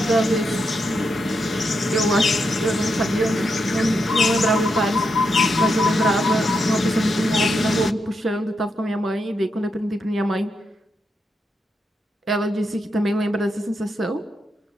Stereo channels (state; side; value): normal; both; correlation 0.83